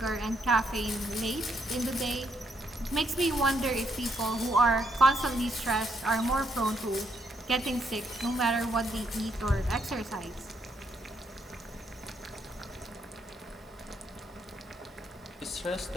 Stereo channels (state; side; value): normal; both; correlation 0.75